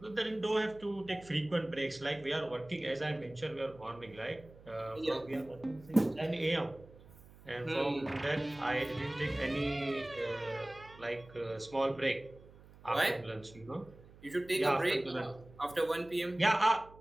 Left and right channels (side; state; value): right; noise; hum, 22 dB below the sound